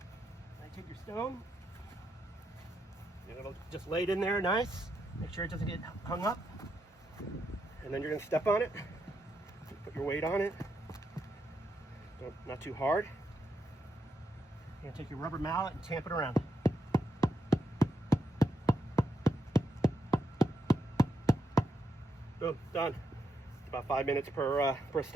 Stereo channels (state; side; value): normal; both; correlation 0.81